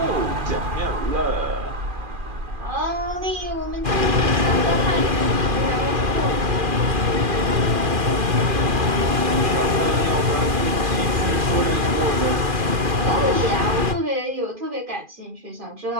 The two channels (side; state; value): left; late; 2.4 ms